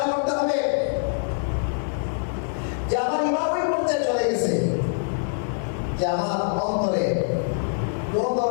করতে হবে যে আমার ঈমান ওই পর্যায়ে চলে গেছে যে আমার অন্তরে কোনো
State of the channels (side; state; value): right; silent; 62 dB below the other